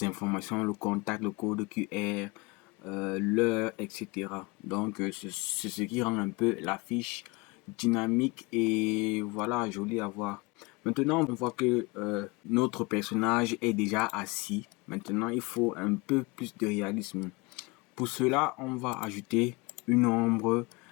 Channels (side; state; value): right; quieter; 25.8 dB